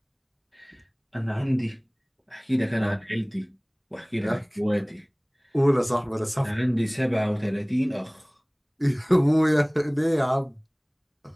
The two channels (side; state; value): both; identical; correlation 1.00